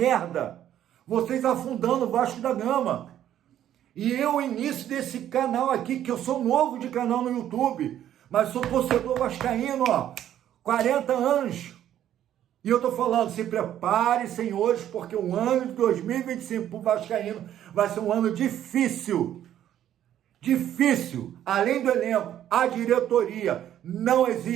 Vocês afundando o Vasco da Gama. E eu, início desse canal aqui, que eu sou novo de canal no YouTube, mas sou torcedor vascaíno, ó, 40 anos. E eu tô falando, se prepare, senhores, porque o ano de 2025 pro vascaíno vai ser um ano difícil. Difícil. Além do elenco, a diretoria não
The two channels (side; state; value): left; quieter; 11.2 dB